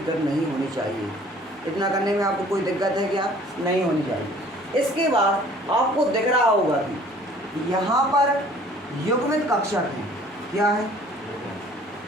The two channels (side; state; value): both; normal; correlation 0.53